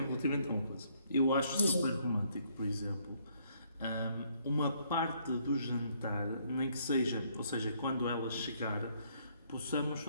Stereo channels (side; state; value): both; inverted; correlation -0.68